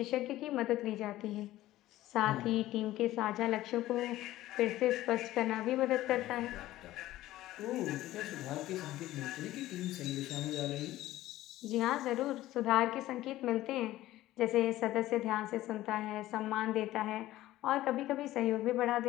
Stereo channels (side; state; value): right; quieter; 15.5 dB